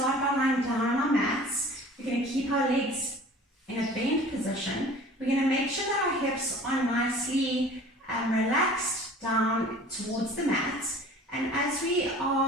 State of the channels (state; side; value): normal; both; correlation 0.45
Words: by lying down on our mats. We're going to keep our legs in a bent position. We're going to make sure that our hips are nicely relaxed down towards the mat. And as we